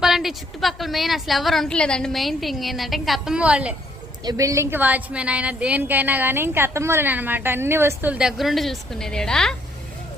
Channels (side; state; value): both; normal; correlation 0.68